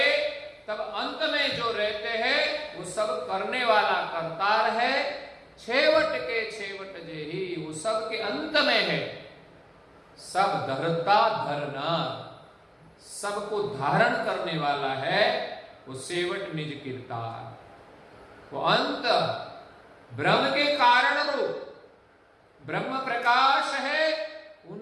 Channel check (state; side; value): identical; both; correlation 1.00